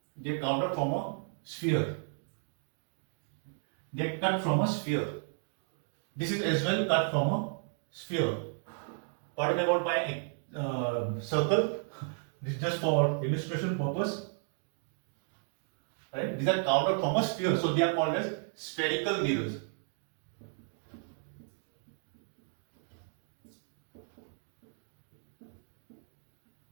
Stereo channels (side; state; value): left; silent; 55 dB below the other